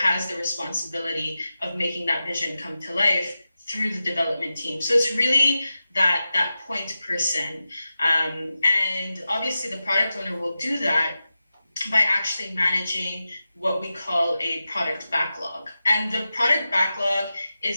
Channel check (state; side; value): inverted; both; correlation -0.92